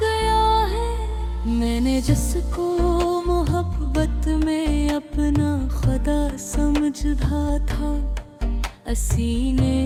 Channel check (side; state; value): both; identical; correlation 1.00